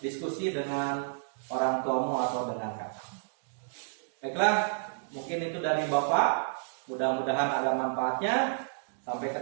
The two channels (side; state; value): left; silent; digital silence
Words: dengan orang tuamu atau dengan kakak. Baiklah, mungkin itu dari Bapak. Mudah-mudahan ada manfaatnya. Sampai